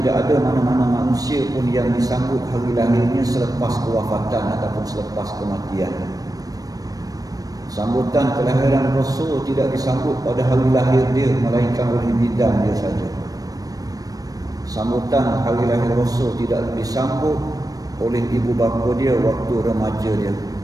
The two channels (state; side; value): late; left; 0.18 ms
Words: ada mana-mana manusia pun yang disambut hari lahirnya selepas kewafatan ataupun selepas kematian. Sambutan kelahiran Rasul tidak disambut pada hari lahir dia, melainkan oleh bidan dia saja. Sambutan hari lahir Rasul tidak disambut oleh ibu bapa dia waktu remaja dia,